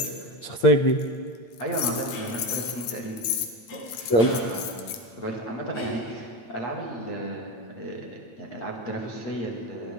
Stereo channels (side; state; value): right; late; 8.8 ms